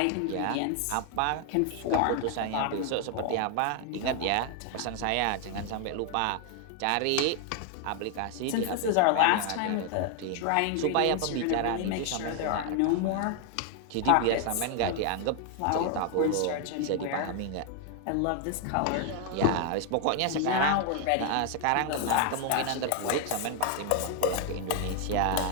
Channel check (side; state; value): both; different; correlation 0.00